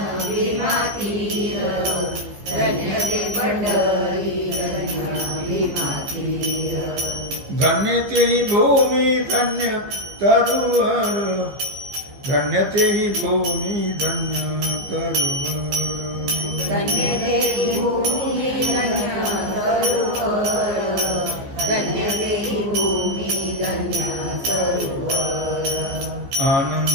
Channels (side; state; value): left; late; 15 ms